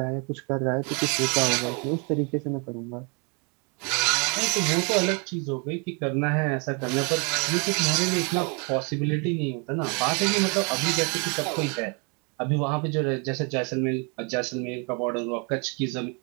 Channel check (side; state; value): left; quieter; 34.0 dB